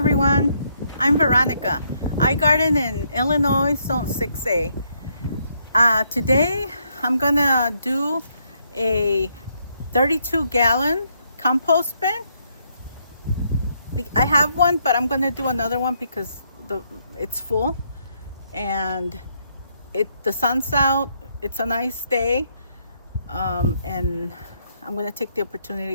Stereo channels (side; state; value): both; inverted; correlation -0.74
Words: I'm Veronica. I garden in Illinois, Zone 6A. Today I'm gonna do a 32-gallon compost bin. I have one, but I'm gonna do another one because it's full and the sun's out. It's a nice day, and I'm gonna take the